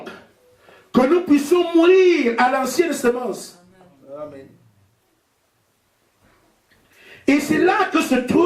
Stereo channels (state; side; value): identical; both; correlation 1.00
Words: que nous puissions mourir à l'ancienne semence. Amen. Et c'est là que se